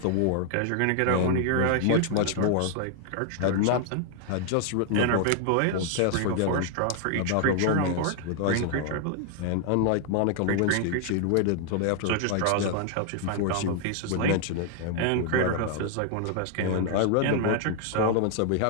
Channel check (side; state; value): both; different; correlation 0.00